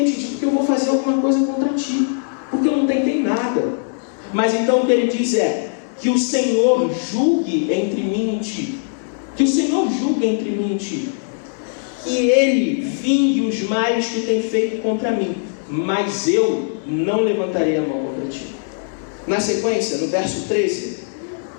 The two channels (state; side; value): silent; right; 62 dB below the other